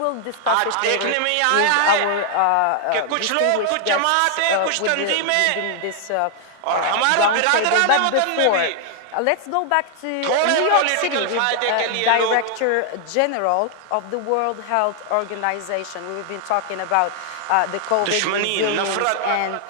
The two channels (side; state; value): both; different; correlation 0.00